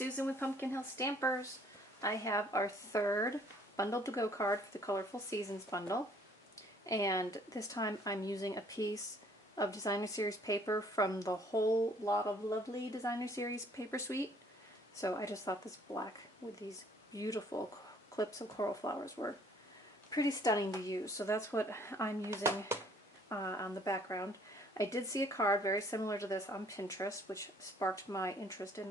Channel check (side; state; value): both; normal; correlation 0.60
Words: with Pumpkin Hill Stampers. I have our third Bundle to Go card for the Colorful Seasons bundle. And this time I'm using a piece of Designer Series paper from the Whole Lot of Lovely Designer Series paper suite. So I just thought this black with these beautiful clips of coral flowers were pretty stunning to use. So that's what I'm using on the background. I did see a card very similar to this on Pinterest, which sparked my interest in